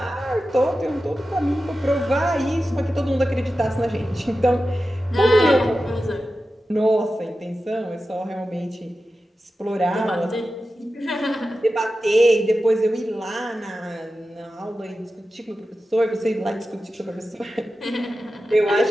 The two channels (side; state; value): both; normal; correlation 0.93